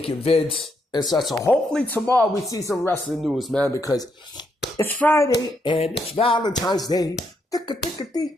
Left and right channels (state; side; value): normal; both; correlation 0.78